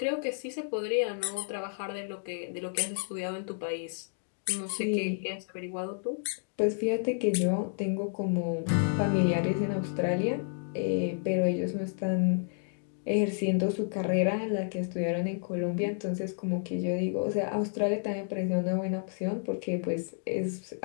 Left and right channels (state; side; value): silent; right; digital silence